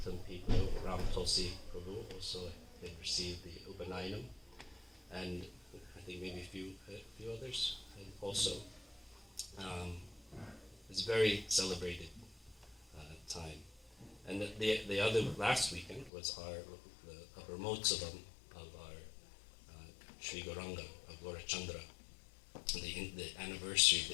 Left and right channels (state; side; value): drops out; right; at 16.1 s